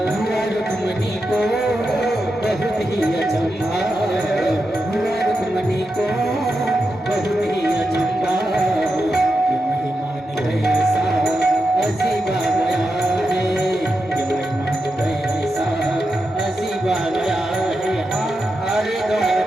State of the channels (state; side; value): normal; both; correlation 0.88